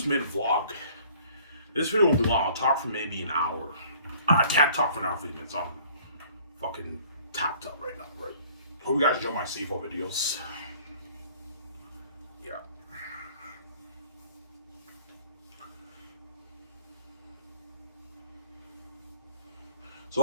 made a vlog. This video won't be long. I'll talk for maybe an hour. I can't talk for an hour 50 minutes. I'm fucking tapped up right now, right? Hope you guys enjoy my CFL videos. Yeah.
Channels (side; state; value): both; inverted; correlation -0.54